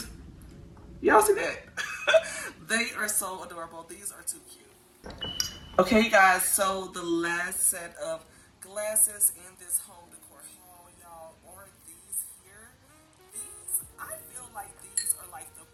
y'all see that? They are so adorable. These are too cute. Okay, you guys, so the last set of glasses in this home decor haul, y'all, are these here. These, I feel like these are like the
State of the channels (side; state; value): both; identical; correlation 1.00